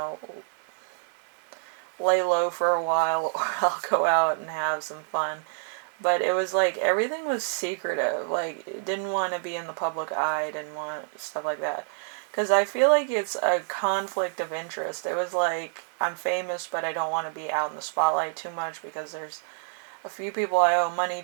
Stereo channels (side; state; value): left; silent; digital silence